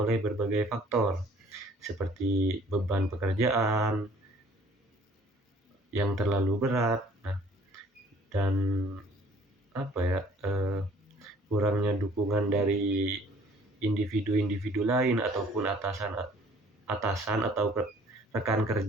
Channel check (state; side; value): normal; both; correlation 0.56